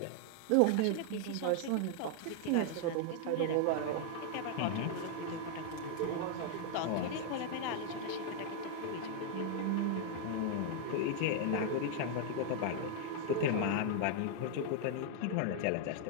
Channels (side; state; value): both; different; correlation 0.00